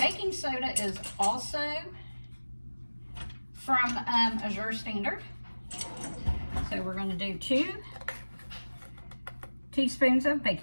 soda is also from Azure Standard. So we're going to do 2 teaspoons of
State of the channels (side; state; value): both; inverted; correlation -1.00